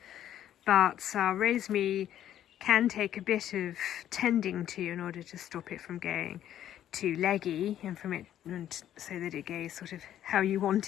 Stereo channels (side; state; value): right; quieter; 11.2 dB